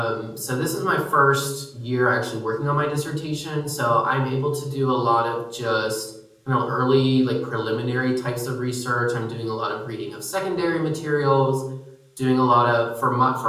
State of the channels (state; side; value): identical; both; correlation 1.00